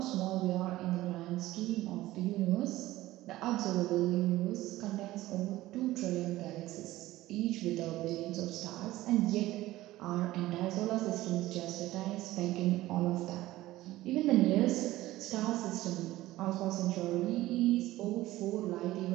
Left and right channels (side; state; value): left; quieter; 16.6 dB